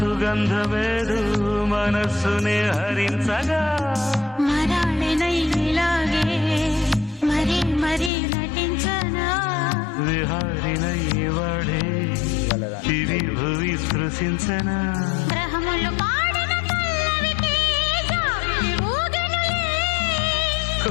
మనస్సునే హరించగా మరాళినైలాగే మరీ మరీ నటించనా విహారినై వాడే దివి భువి స్పృశించనా గ్రహములు పాడిన పల్లవికి జాబిలి ఊగెనులే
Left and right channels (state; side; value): drops out; right; at 8.1 s